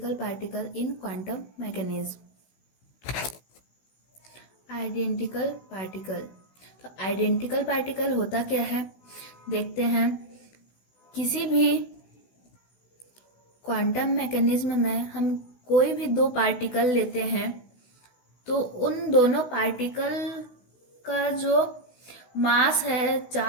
particle in quantum mechanism. Identical particle. तो आइडेंटिकल पार्टिकल होता क्या है देखते हैं। किसी भी क्वांटम मैकेनिज्म में हम कोई भी दो पार्टिकल लेते हैं तो उन दोनों पार्टिकल का जो मास है,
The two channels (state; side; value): late; right; 16 ms